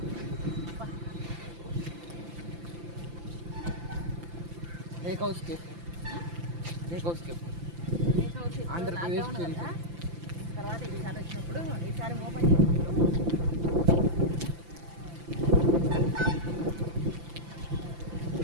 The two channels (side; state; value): left; late; 5.9 ms